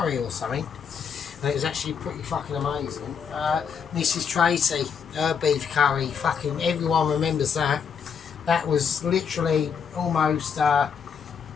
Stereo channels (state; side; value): quieter; right; 6.8 dB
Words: or something. And it was actually pretty fucking amazing. Mrs. Tracy, her beef curry, fucking everyone remembers that. That was literally almost